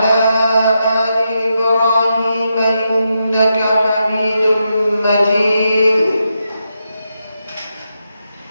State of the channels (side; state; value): both; inverted; correlation -0.85